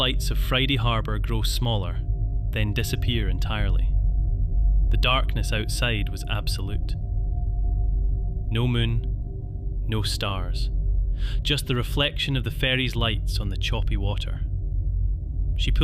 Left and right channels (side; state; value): both; identical; correlation 1.00